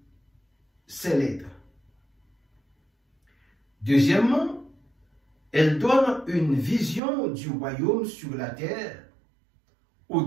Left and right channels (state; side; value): drops out; left; at 7.0 s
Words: ces lettres. Deuxièmement, elles donnent une vision du royaume sur la terre aux